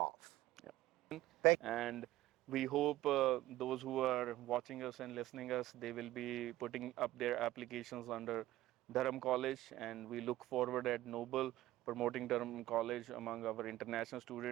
Thank And we hope those who are watching us and listening us, they will be putting up their applications under Durham College, and we look forward at Noble promoting Durham College among our international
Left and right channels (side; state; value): left; quieter; 15.8 dB